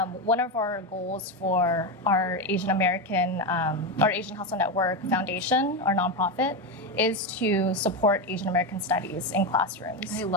One of our goals for our Asian Hustle Network Foundation, our nonprofit, is to support Asian American studies in classrooms. I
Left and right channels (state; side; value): normal; both; correlation 0.12